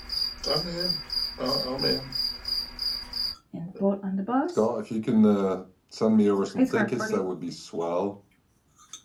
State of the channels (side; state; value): both; identical; correlation 1.00